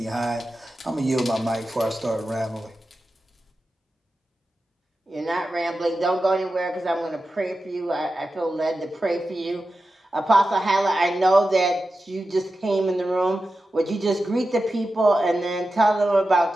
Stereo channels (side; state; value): both; normal; correlation 0.92